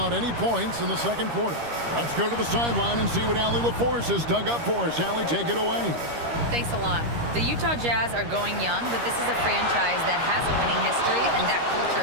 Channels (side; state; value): left; late; 13 ms